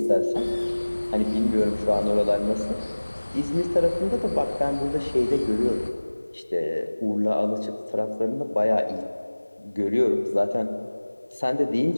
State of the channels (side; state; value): both; inverted; correlation -1.00